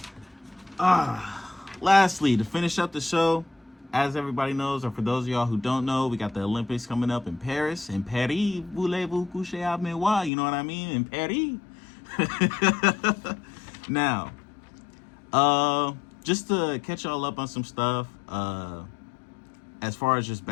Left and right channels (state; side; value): drops out; right; at 10.3 s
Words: Lastly, to finish up the show, as everybody knows, or for those of y'all who don't know, we got the Olympics coming up in Paris. In Paris, voulez-vous coucher avec moi? You know what I mean? In Paris. Now, just to catch y'all up on some stuff, as far as just